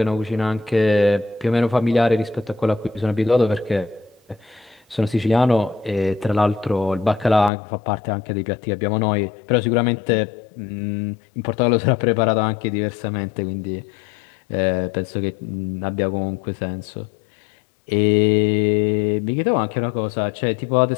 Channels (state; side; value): drops out; right; at 7.5 s